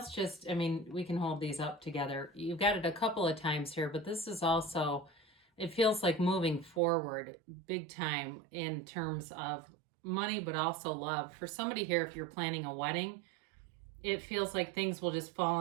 can hold these up together. You've got it a couple of times here, but this is also, it feels like moving forward big time in terms of money, but also love. For somebody here, if you're planning a wedding, it feels like things will just fall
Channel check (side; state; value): left; drops out; at 6.8 s